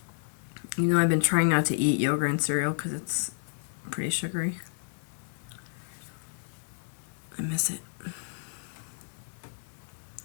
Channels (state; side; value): silent; right; digital silence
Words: You know, I've been trying not to eat yogurt and cereal because it's pretty sugary. I miss it.